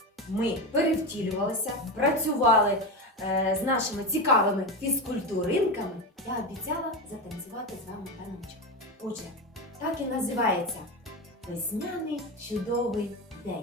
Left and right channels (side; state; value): both; normal; correlation 0.18